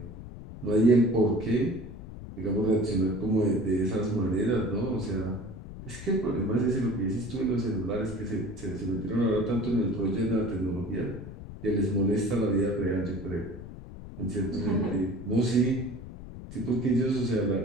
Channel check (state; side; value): noise; left; rumble, 13 dB below the sound